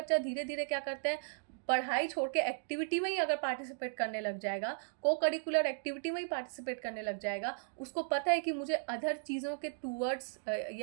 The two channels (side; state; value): left; silent; digital silence